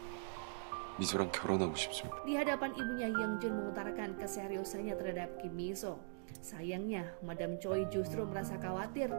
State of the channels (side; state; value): left; silent; digital silence